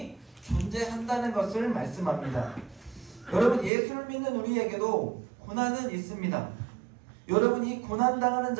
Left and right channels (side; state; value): left; drops out; at 3.7 s